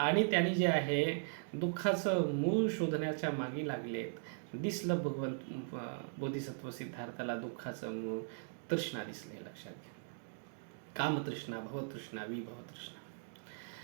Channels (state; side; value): silent; left; digital silence